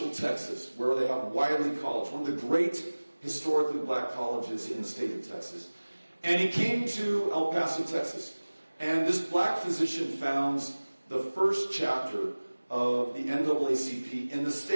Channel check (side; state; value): both; inverted; correlation -1.00